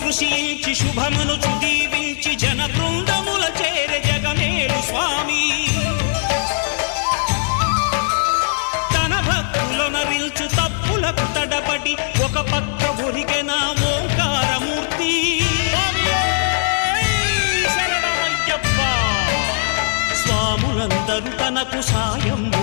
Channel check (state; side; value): silent; right; digital silence